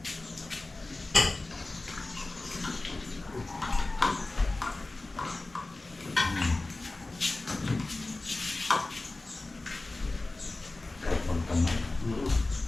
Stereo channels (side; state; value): right; quieter; 3.1 dB